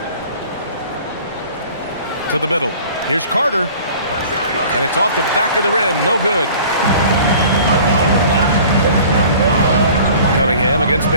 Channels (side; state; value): both; inverted; correlation -0.47